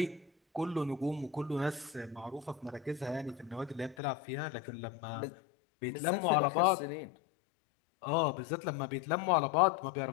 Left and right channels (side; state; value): right; drops out; at 4.0 s